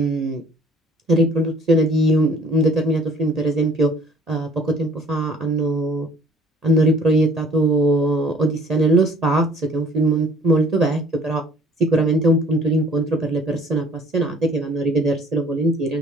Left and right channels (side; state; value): both; normal; correlation 0.54